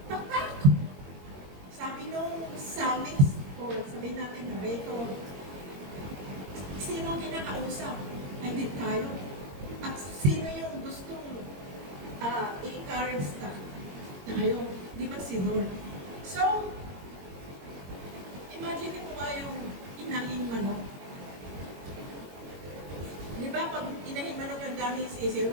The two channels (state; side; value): late; left; 21 ms